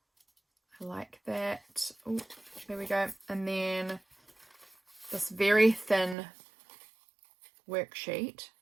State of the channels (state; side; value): drops out; left; at 6.2 s